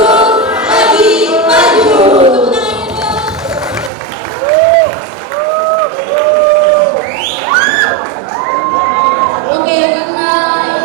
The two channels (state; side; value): drops out; left; at 3.9 s